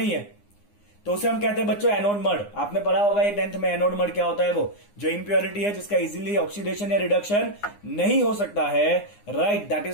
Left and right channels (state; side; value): late; right; 9.8 ms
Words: है। तो उसे हम कहते हैं बच्चों एनोड मड। आपने पढ़ा होगा ये 10th में, एनोड मड क्या होता है, वो जो इंप्योरिटी है जिसका इजीली ऑक्सीडेशन या रिडक्शन नहीं हो सकता है, right, that